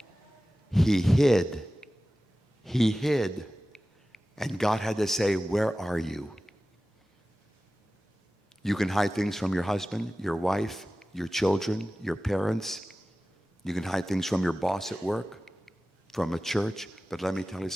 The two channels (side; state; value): both; normal; correlation 0.96